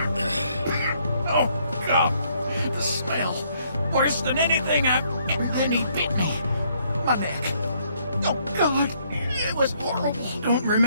Oh, God, the smell. Worse than anything I've... And then he bit me. My neck. Oh, God. It was horrible. Don't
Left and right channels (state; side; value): inverted; both; correlation -0.69